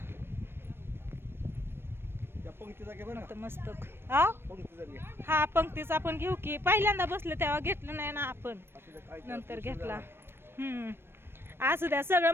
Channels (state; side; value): late; left; 0.11 ms